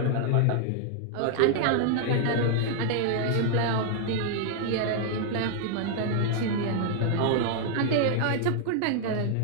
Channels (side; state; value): both; different; correlation -0.01